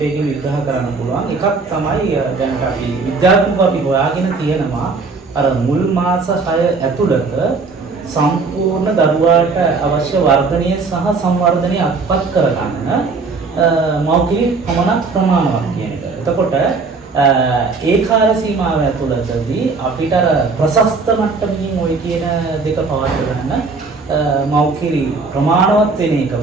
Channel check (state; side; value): quieter; left; 4.2 dB